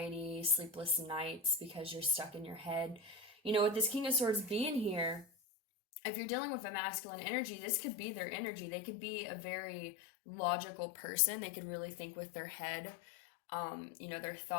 sleepless nights, because you're stuck in your head. With this King of Swords being here, if you're dealing with a masculine energy, this could be their energy. They could be a very logical person. They could really think with their head, their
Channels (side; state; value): right; drops out; at 5.2 s